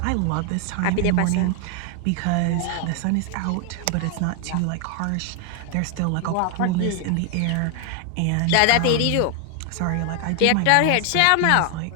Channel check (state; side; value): different; both; correlation 0.00